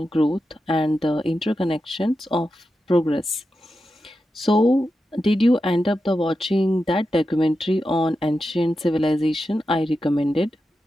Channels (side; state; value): both; normal; correlation 0.90